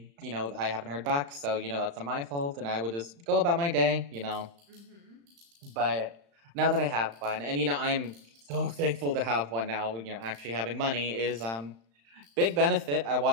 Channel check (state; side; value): late; left; 35 ms